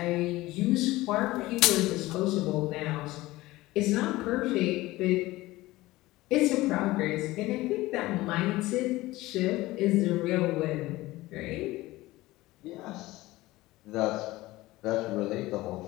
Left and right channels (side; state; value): right; quieter; 18.6 dB